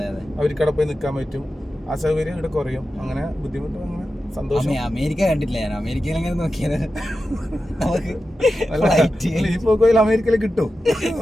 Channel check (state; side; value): normal; both; correlation 0.92